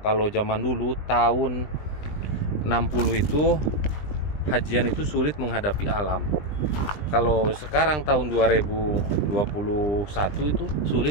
Kalau zaman dulu tahun 60 itu hajian itu sulit menghadapi alam. Kalau sekarang tahun 2021 itu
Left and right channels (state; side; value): late; right; 20 ms